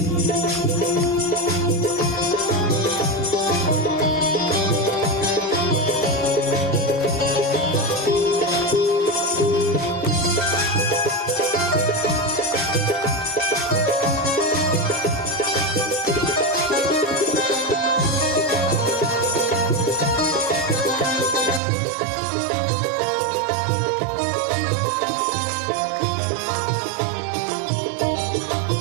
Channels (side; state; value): left; drops out; at 21.6 s